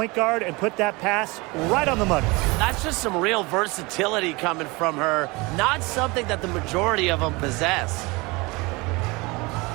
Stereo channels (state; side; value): quieter; left; 24.9 dB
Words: guard and put that pass right on the money. That's just some real versatility coming from her. Not something that the majority of them possess.